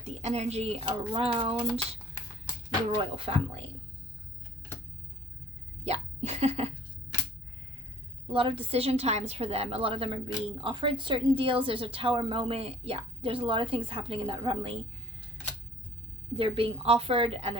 the energy around the royal family. Yeah. A lot of decision times for them. A lot of them are being offered certain deals. There's a tower moment. Yeah, there's a lot of things happening in that family. They're being offered and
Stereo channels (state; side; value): normal; both; correlation 0.53